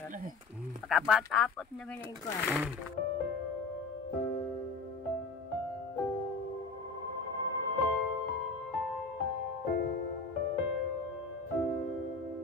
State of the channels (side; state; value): right; quieter; 4.1 dB